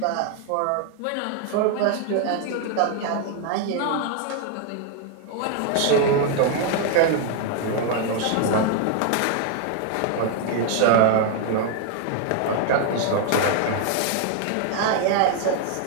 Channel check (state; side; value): different; both; correlation 0.00